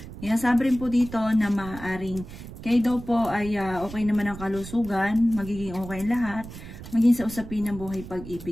Sinasabi rin po dito na maaaring kayo daw po ay okay naman ang kalusugan, magiging okay lahat, maging sa usapin ng buhay,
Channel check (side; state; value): right; noise; rumble, 13 dB below the sound